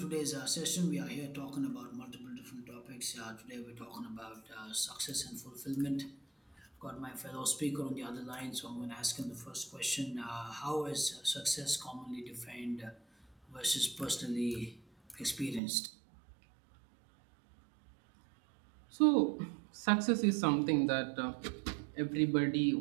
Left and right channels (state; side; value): drops out; left; at 15.6 s